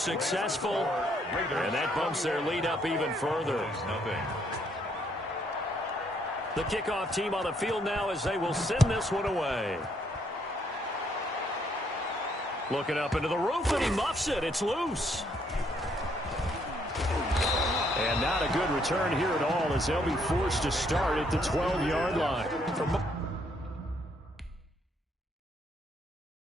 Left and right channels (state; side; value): normal; both; correlation 0.70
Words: and that bumps their lead up even further. The kickoff team on the field now as they will send this one away. Looking up into the roof, and he muffs it. It's loose. And not a good return here at all as they'll be forced to start at the 12-yard line.